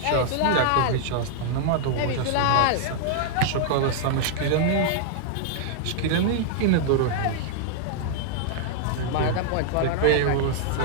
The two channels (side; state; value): both; different; correlation -0.01